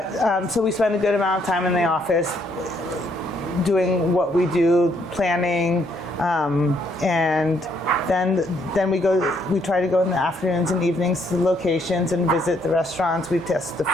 we spend a good amount of time in the office doing what we do, planning, and then we try to go in the afternoons and evenings to the locations and visit the restaurants. We test the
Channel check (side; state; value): both; normal; correlation 0.70